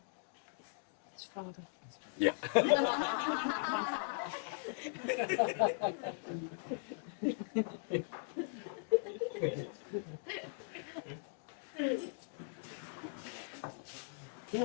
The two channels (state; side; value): silent; right; digital silence